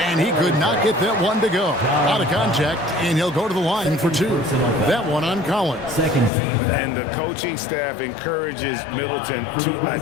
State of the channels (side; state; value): right; drops out; at 6.3 s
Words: and he could not get that one to go. Out of contact, and he'll go to the line for 2. That one on Collins. Second team. And the coaching staff encourages Middleton